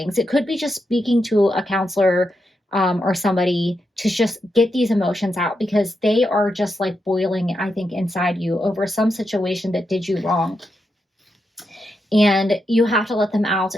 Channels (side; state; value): both; normal; correlation 0.85